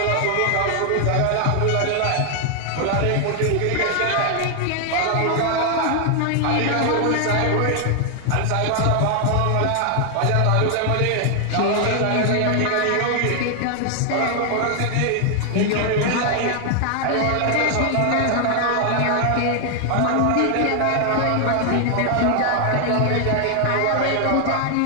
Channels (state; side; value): different; both; correlation 0.00